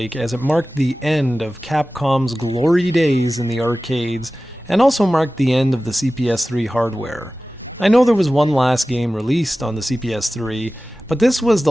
as it marked the end of Capcom's glory days in the arcades, and also marked the end of the CPS-3 hardware. I know there was one last game released on the CPS-3, but this was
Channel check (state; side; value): normal; both; correlation 0.96